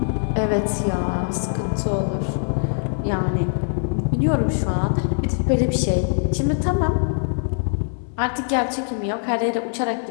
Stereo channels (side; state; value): right; silent; digital silence